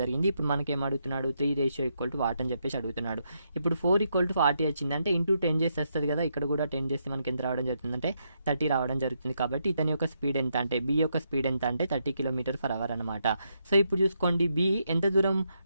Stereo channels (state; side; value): inverted; both; correlation -0.80